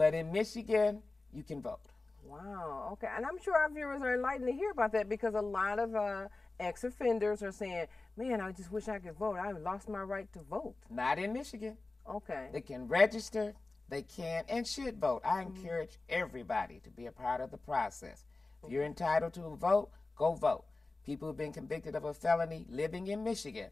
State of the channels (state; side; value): quieter; right; 3.3 dB